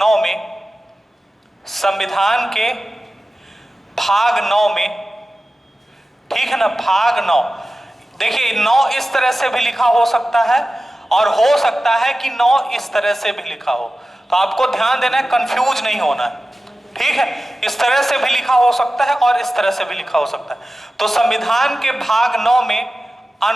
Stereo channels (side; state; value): both; normal; correlation 0.95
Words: 9 में, ठीक है ना, भाग 9, देखिए 9 इस तरह से भी लिखा हो सकता है और हो सकता है कि 9 इस तरह से भी लिखा हो। तो आपको ध्यान देना है, कंफ्यूज नहीं होना है। ठीक है, इस तरह से भी लिखा हो सकता है और इस तरह से भी लिखा हो सकता है। तो संविधान के भाग 9 में